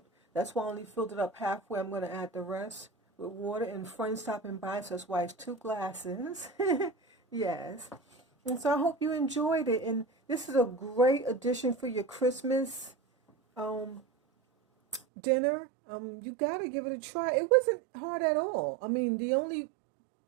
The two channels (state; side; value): drops out; left; at 15.0 s